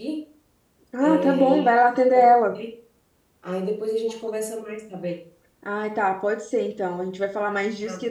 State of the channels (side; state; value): both; identical; correlation 1.00